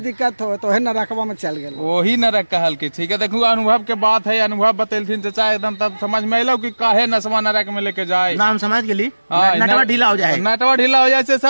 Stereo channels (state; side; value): inverted; both; correlation -1.00